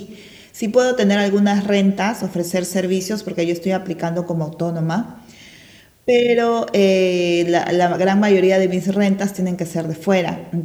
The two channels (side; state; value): both; identical; correlation 1.00